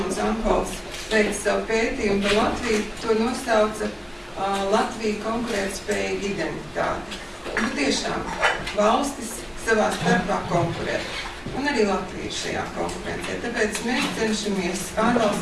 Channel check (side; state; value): both; identical; correlation 1.00